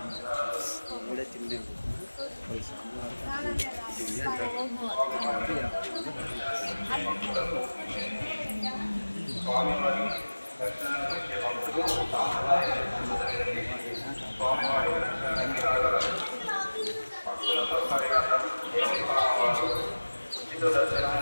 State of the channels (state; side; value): inverted; both; correlation -1.00